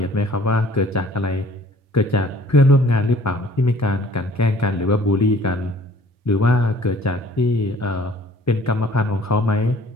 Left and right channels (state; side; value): normal; both; correlation 0.54